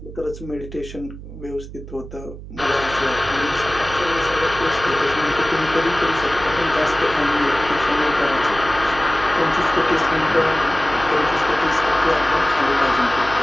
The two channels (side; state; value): right; noise; hum, 13 dB below the sound